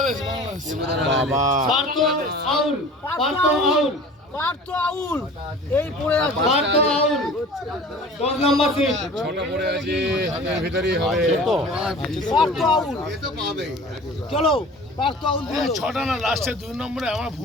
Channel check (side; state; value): both; normal; correlation 0.42